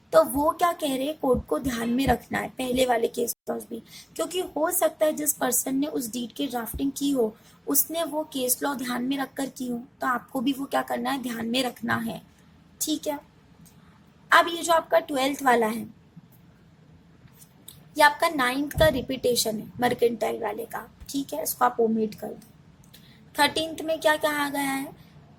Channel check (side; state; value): both; identical; correlation 1.00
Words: तो वो क्या कह रहे हैं, कोड को ध्यान में रखना है, पहले वाले केस लॉज भी, क्योंकि हो सकता है जिस पर्सन ने उस डीड की ड्राफ्टिंग की हो उसने वो केस लॉ ध्यान में रखकर की हो, तो आपको भी वो क्या करना है, ध्यान में रखना है, ठीक है। अब ये जो आपका 12th वाला है, ये आपका 9th का रिपीटेशन है मर्केंटाइल वाले का, ठीक है, इसको आप ओमिट कर दो। 13th में क्या कहा गया है